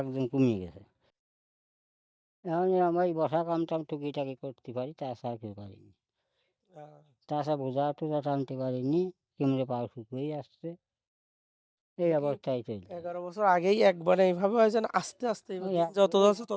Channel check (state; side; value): identical; both; correlation 1.00